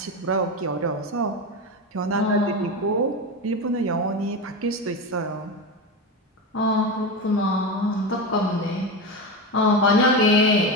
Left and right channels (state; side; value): normal; both; correlation 0.19